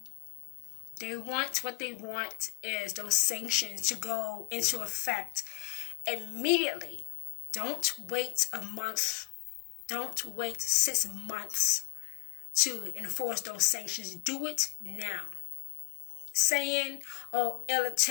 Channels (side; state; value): right; quieter; 34.6 dB